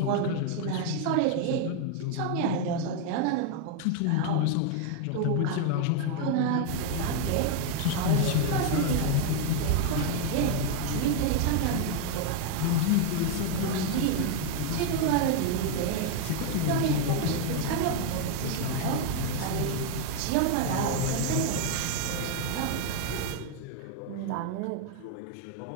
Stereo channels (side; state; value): both; different; correlation 0.00